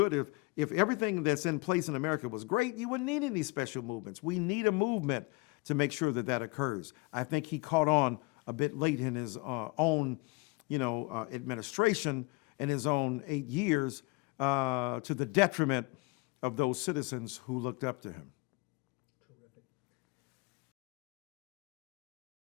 if everything that's in place in America was great, you wouldn't need any special movements. We need a movement to make sure that that occurs. I think he caught on a bit late in his own, administration and his own 8 years to the detriment of those citizens who looked up to him. Terrific.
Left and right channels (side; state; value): right; quieter; 26.1 dB